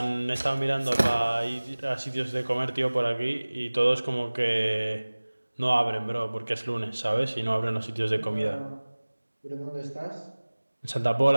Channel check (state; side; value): inverted; both; correlation -1.00